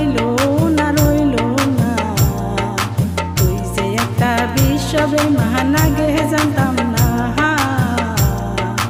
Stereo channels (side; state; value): both; identical; correlation 1.00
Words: না তুই যে একটা বিশ্ববে মহান আগে জানতাম না